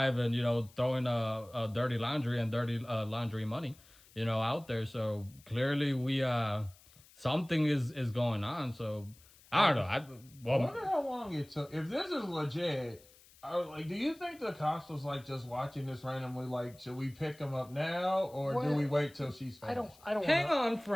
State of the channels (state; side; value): noise; left; hiss, 25 dB below the sound